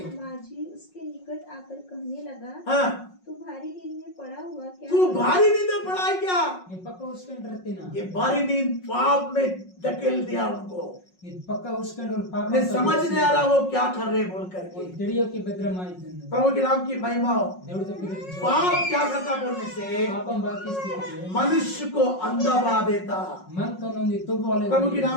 माझी उसके निकट आकर कहने लगा, हाँ तू भारी नींद में पड़ा हुआ क्या तू है? भारी नींद में पड़ा है क्या? ఈ పక్క విష్కంటే రతినా ये भारी नींद पाप में धकेल दिया उनको, ఈ పక్క విష్కంటే పాప उन्हें समझ नहीं आ रहा वो क्या कर रहे बोल करके। తెలియకి భద్రమాయితుంది प्रभु के नाम की महिमा हो। దేవుడితో పిలిచి पाप क्या करता बोलने से పాపం బాకి స్థితి मनुष्य को अंधा बना देता। मन तनొంది తుబోలే प्रभु के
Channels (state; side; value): late; right; 5.5 ms